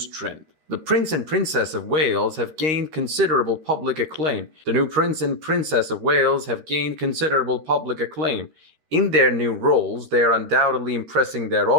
trend. The Prince and Princess of Wales have gained considerable public acclaim. The new Prince and Princess of Wales have gained considerable public acclaim. In their new roles, they are undoubtedly impressing their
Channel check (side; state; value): left; late; 13 ms